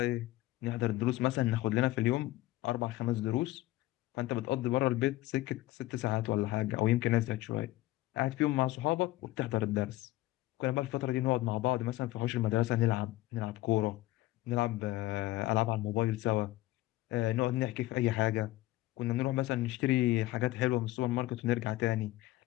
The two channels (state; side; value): quieter; right; 17.2 dB